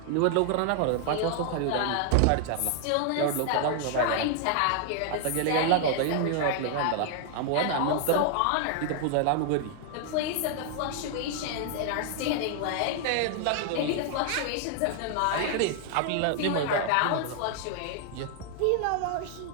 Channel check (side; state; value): both; different; correlation 0.00